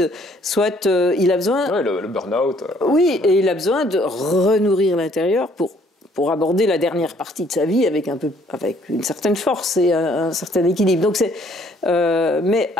il a besoin... Oui, le burn-out. Oui, et il a besoin de renourrir l'intérieur pour aborder la dernière partie de sa vie avec une certaine force et un certain équilibre. Donc mais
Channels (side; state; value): both; normal; correlation 0.62